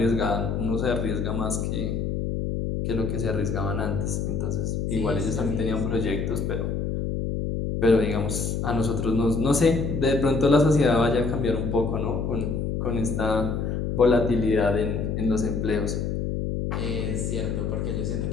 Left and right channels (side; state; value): left; noise; hum, 1 dB below the sound